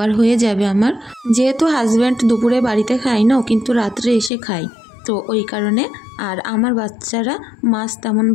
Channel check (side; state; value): right; drops out; at 4.3 s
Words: হয়ে যাবে আমার। যেহেতু হাজব্যান্ড দুপুরে বাড়িতে খায় না, ও কিন্তু রাত্রে এসে খায়, তো ওই কারণে। আর আমার বাচ্চারা মাছ তেমন